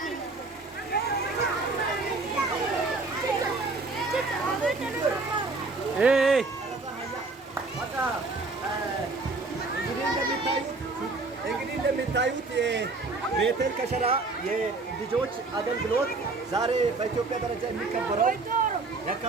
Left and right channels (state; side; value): quieter; left; 3.6 dB